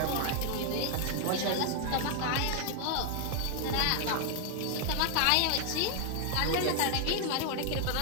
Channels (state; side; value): different; both; correlation 0.00